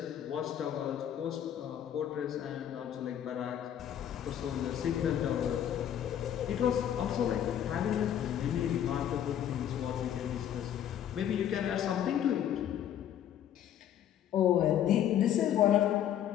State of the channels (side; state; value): right; quieter; 10.3 dB